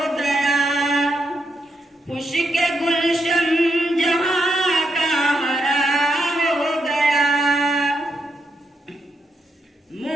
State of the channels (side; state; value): both; normal; correlation 0.81